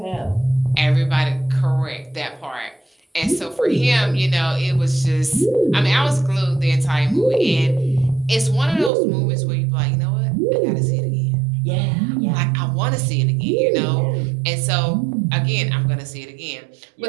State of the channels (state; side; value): drops out; left; at 8.9 s